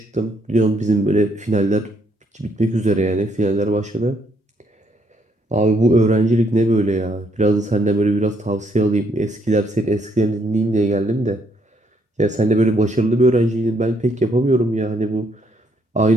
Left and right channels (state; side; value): normal; both; correlation 0.72